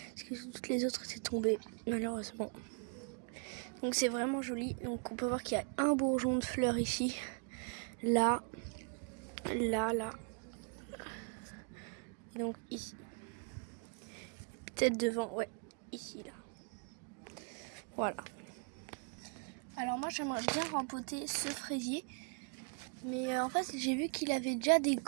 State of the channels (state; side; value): quieter; left; 39.5 dB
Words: que toutes les autres étaient tombées, malheureusement. Donc c'est vraiment joli. Donc on peut voir qu'il y a un bourgeon de fleurs ici, là. Et donc ici. Peut-être devant, ouais, ici, là. Voilà. Alors moi, j'aimerais bien rempoter ce fraisier. Mais en fait, j'ai vu qu'il avait déjà des...